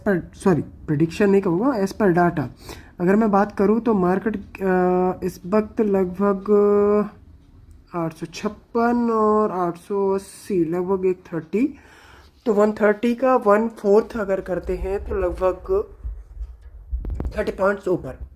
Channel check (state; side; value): identical; both; correlation 1.00